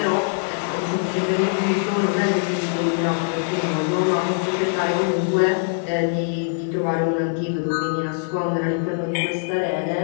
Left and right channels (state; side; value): silent; right; digital silence